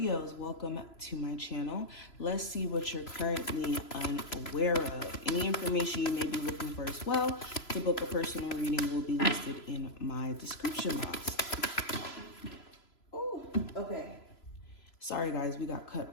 welcome to my channel. Let's see what you're currently unaware of. Any information you may be looking for as well to book a personal reading will be listed in my description box. Oh, okay. Sorry guys, we got cut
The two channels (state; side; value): late; right; 3.0 ms